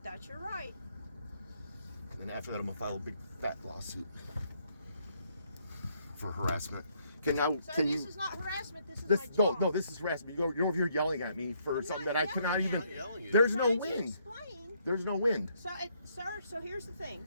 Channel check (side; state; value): both; inverted; correlation -0.71